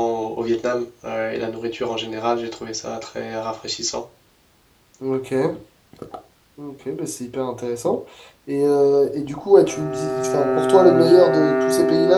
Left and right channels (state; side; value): identical; both; correlation 1.00